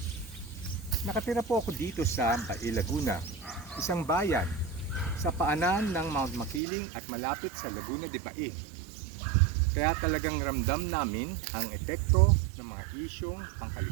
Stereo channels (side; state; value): left; drops out; at 6.6 s